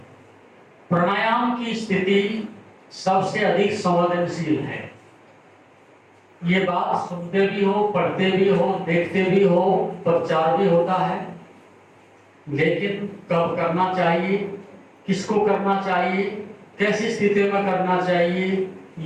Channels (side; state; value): both; identical; correlation 1.00